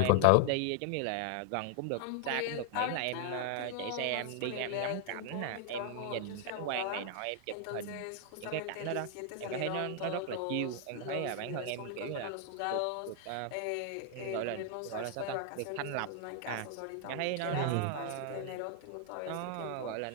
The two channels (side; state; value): both; different; correlation 0.00